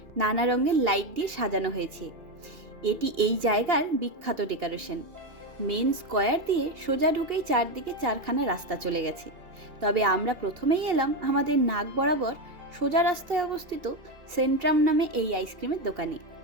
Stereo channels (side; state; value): left; late; 2.8 ms